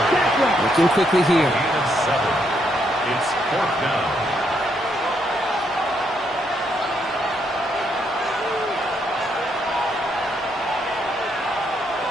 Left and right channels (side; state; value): both; normal; correlation 0.75